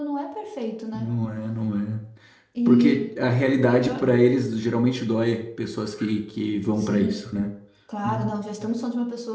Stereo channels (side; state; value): both; identical; correlation 1.00